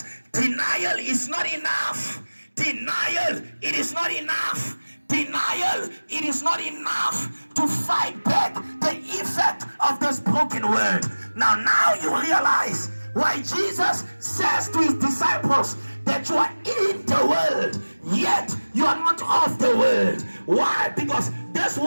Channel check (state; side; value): inverted; both; correlation -1.00